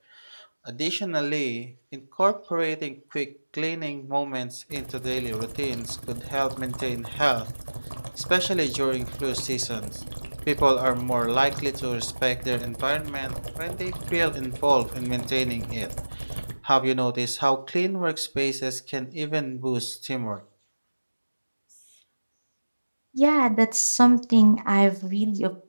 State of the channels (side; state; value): both; inverted; correlation -1.00